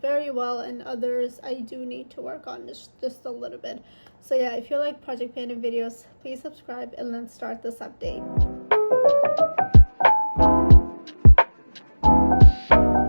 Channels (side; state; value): both; inverted; correlation -1.00